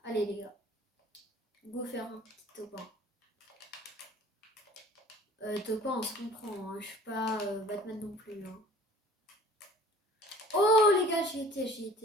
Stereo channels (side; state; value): both; normal; correlation 0.49